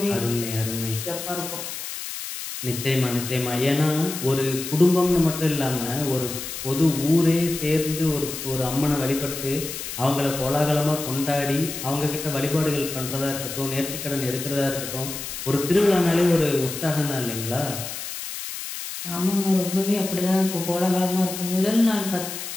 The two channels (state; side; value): noise; left; hiss, 7 dB below the sound